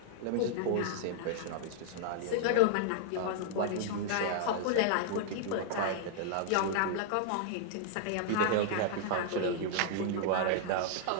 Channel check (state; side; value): different; both; correlation -0.01